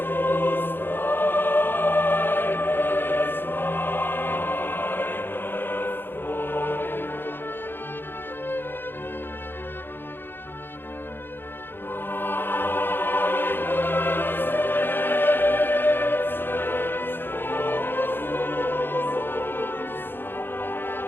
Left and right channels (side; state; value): right; late; 0.10 ms